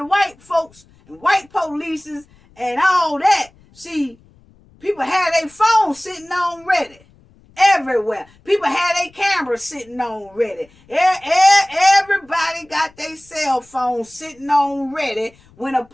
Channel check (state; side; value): noise; left; rumble, 29 dB below the sound